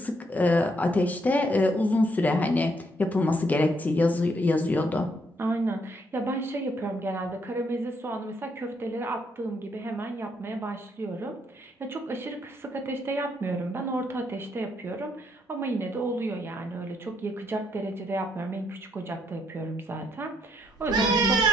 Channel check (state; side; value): normal; both; correlation 0.73